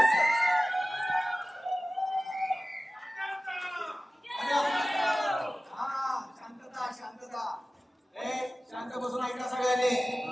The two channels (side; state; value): both; normal; correlation 0.96